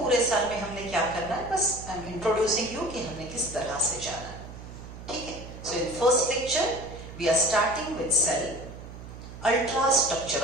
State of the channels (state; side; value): noise; right; hum, 13 dB below the sound